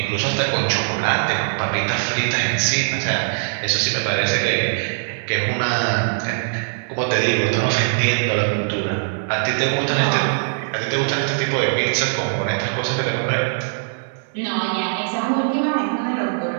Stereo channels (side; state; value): left; silent; digital silence